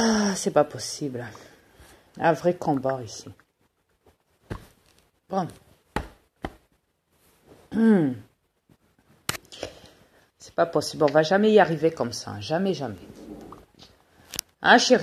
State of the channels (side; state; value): both; identical; correlation 1.00